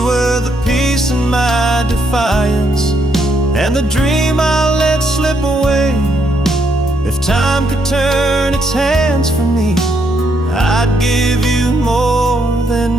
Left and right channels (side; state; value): both; normal; correlation 0.74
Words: were the peace in my defiance, and the dream I let slip away. If time could turn its hands from me, I'd give you more